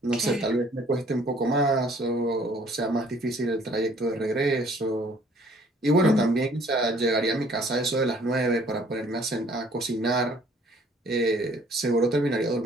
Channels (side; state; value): both; normal; correlation 0.58